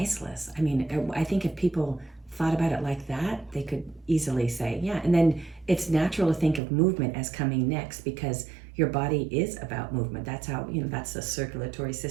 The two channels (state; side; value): drops out; left; at 6.6 s